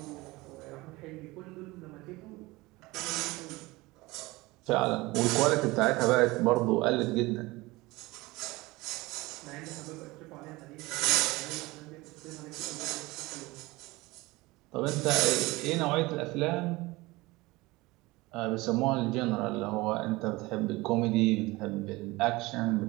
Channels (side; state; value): left; quieter; 21.5 dB